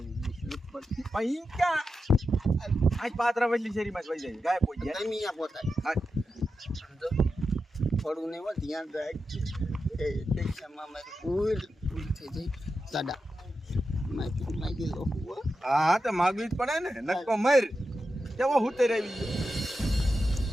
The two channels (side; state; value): both; normal; correlation 0.89